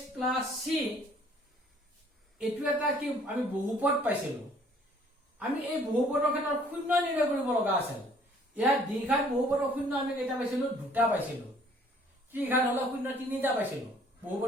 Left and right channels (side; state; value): both; normal; correlation 0.58